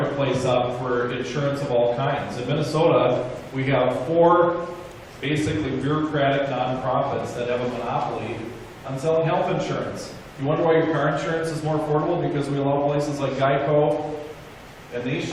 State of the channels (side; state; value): both; identical; correlation 1.00